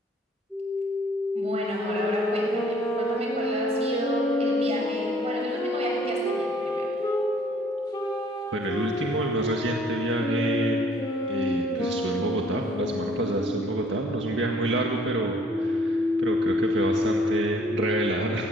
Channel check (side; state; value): both; normal; correlation 0.59